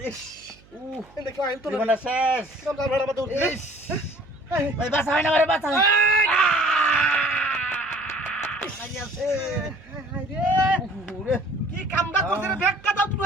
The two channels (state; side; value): noise; right; hum, 27 dB below the sound